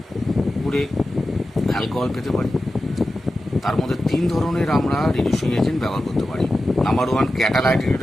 করে অ্যালকোহল পেতে পারি। তার মধ্যে 3 ধরনের আমরা রিডিউসিং এজেন্ট ব্যবহার করতে পারি। Number 1 catalytic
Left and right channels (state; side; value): normal; both; correlation 0.92